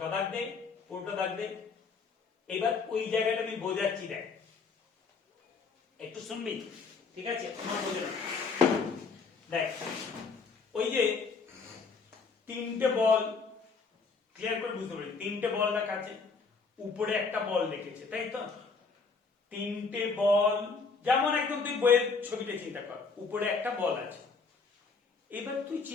দাগ দে, পুরোটা দাগ দে। এবার ওই জায়গাটা আমি বোঝাচ্ছি, দেখ একটু শুনবি, ঠিক আছে? আমার বোঝে না, দেখ ওই যে তিনটে বল, ক্লিয়ার করে বুঝতে পারি, তিনটে বল রাখা আছে, উপরে একটা বল রেখেছে, তাই তো? তিনটে বল, যেমন একদম তুই বইয়ের ছবিটা চিন্তা কর, উপরে একটা বল আছে। এবার তুই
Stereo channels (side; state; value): right; quieter; 4.7 dB